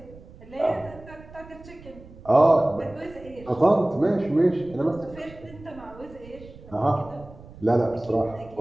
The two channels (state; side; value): noise; right; rumble, 20 dB below the sound